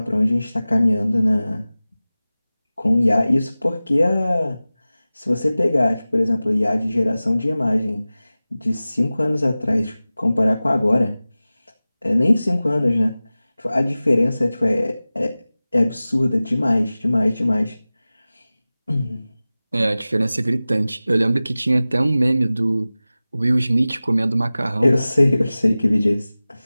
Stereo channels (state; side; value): inverted; both; correlation -0.97